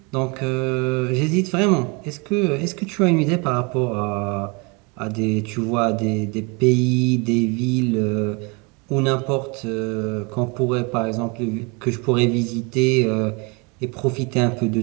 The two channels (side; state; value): left; quieter; 30.3 dB